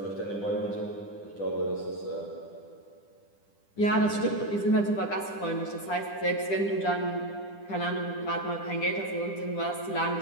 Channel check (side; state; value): right; late; 10 ms